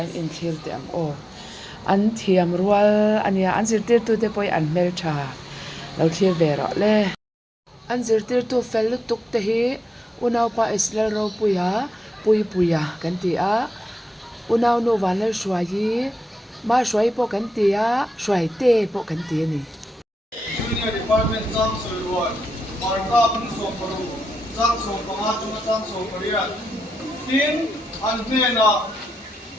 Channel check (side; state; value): both; normal; correlation 0.89